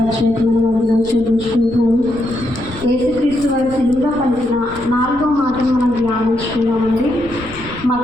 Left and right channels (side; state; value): left; noise; rumble, 18 dB below the sound